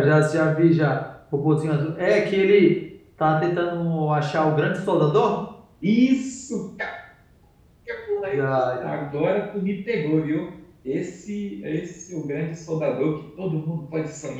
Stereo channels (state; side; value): identical; both; correlation 1.00